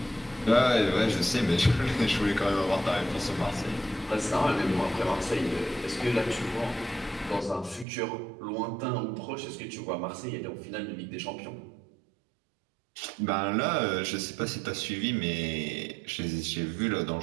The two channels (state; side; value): drops out; left; at 7.9 s